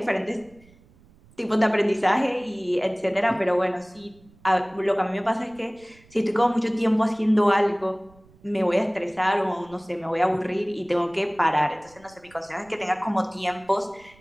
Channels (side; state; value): right; noise; rumble, 28 dB below the sound